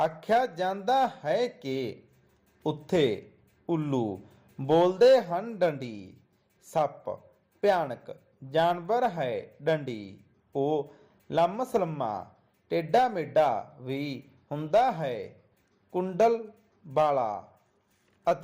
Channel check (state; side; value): identical; both; correlation 1.00